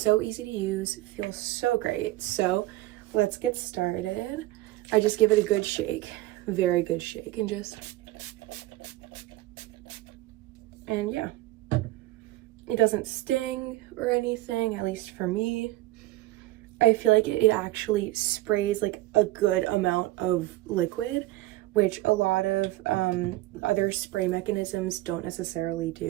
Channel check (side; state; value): left; quieter; 17.2 dB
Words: so easy to use, feels so great. So let's get started. I just give it a good shake, very good shake, and yeah, it doesn't sting or anything, at least for me. I feel like it actually sprays like a good amount of liquid, which a lot of other spray mechanisms don't necessarily